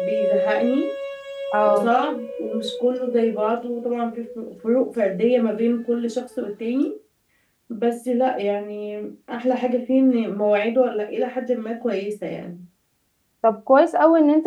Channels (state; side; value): identical; both; correlation 1.00